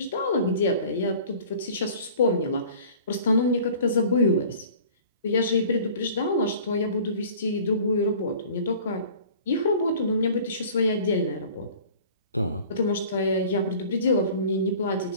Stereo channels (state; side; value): inverted; both; correlation -0.46